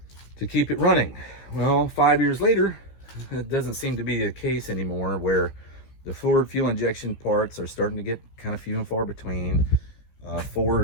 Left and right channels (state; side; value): late; right; 15 ms